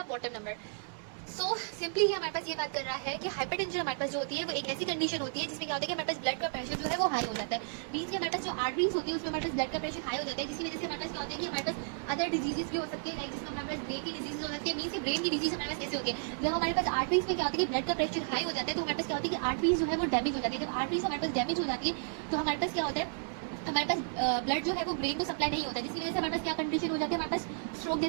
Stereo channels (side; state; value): left; silent; digital silence